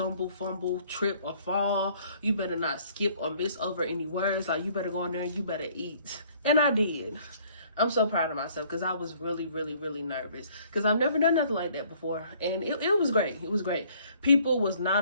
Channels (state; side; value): inverted; both; correlation -0.60